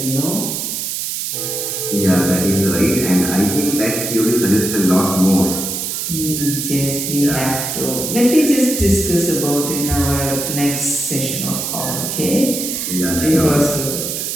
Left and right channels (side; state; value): right; noise; hiss, 3 dB below the sound